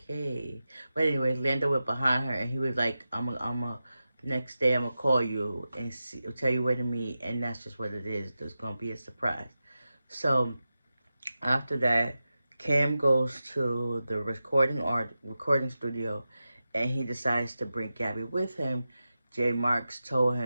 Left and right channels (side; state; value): both; inverted; correlation -0.93